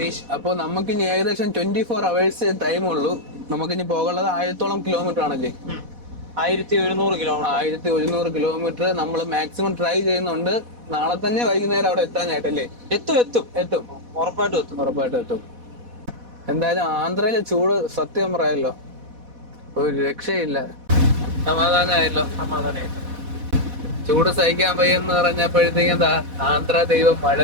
അപ്പൊ നമുക്ക് ഇനി ഏകദേശം 24 hours ടൈം ഉള്ളൂ. നമുക്കിനി പോകാനുള്ളത് 1000-ഓളം കിലോമീറ്റർ ആണല്ലേ? 1100 കിലോമീറ്റർ. 1100 കിലോമീറ്റർ നമ്മൾ മാക്സിമം ട്രൈ ചെയ്യുന്നുണ്ട്. നാളെ തന്നെ വൈകുന്നേരം അവിടെ എത്താനായിട്ടല്ലേ? എത്തും. ഉറപ്പായിട്ടും എത്തും. എന്തായാലും ആന്ധ്രയിലെ ചൂട് സത്യം പറയാലോ ഒരു രക്ഷയില്ല. സമാധാനമായല്ലോ. ചൂട് സഹിക്കാൻ വയ്യെന്ന് പറഞ്ഞപ്പോഴത്തേക്കും ആന്ധ്ര ദൈവം മഴ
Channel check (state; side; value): late; left; 4.1 ms